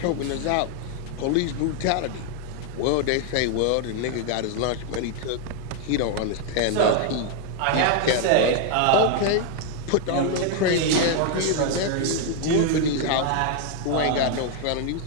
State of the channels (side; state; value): both; different; correlation 0.00